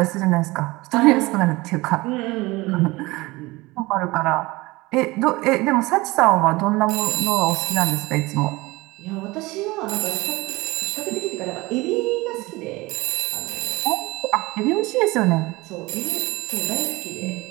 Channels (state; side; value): quieter; left; 21.7 dB